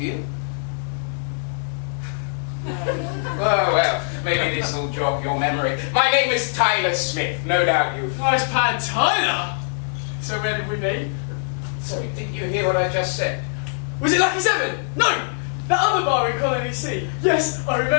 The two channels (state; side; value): silent; right; digital silence